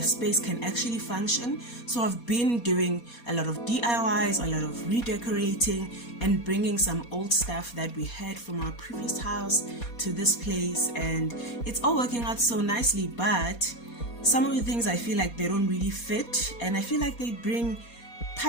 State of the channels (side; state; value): right; late; 4.2 ms